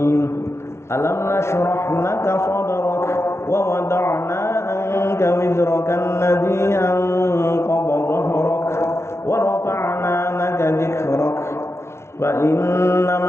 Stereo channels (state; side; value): late; right; 0.13 ms